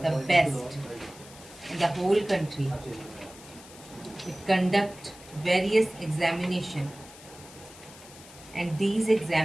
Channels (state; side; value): noise; left; hiss, 19 dB below the sound